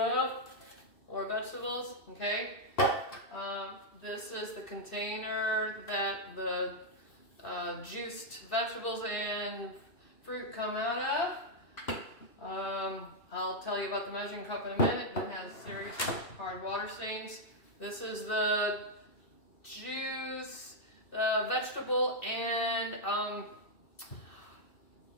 or vegetables, okay? This is the container that the juiced vegetables and fruit come out of. I'll tell you about the measuring cup in a minute. It has serious hard water stains. This is the juice, the vegetable and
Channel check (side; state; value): right; late; 2.6 ms